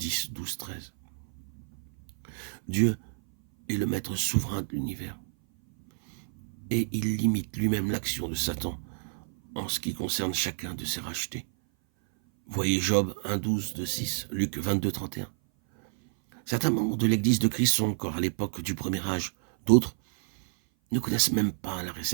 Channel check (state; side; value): silent; left; 57 dB below the other